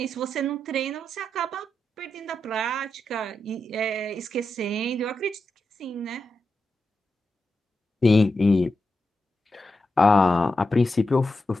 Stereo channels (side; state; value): both; normal; correlation 0.88